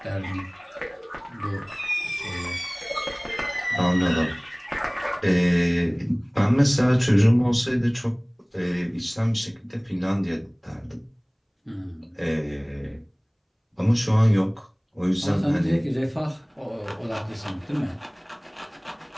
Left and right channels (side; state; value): both; identical; correlation 1.00